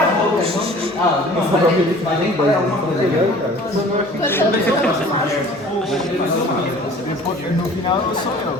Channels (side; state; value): both; normal; correlation 0.47